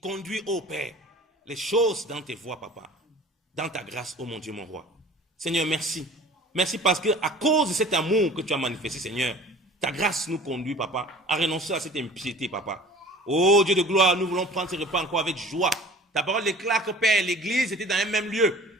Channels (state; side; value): normal; both; correlation 0.46